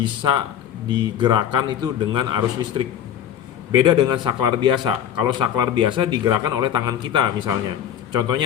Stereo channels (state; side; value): quieter; right; 9.7 dB